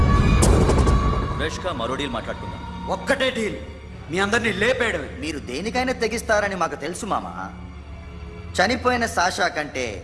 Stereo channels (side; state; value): both; identical; correlation 1.00